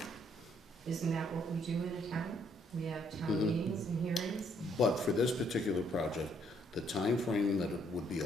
Isn't that what we do in a town? We have town meetings and hearings? But for this particular project, the time frame that it would be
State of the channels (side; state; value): both; normal; correlation 0.68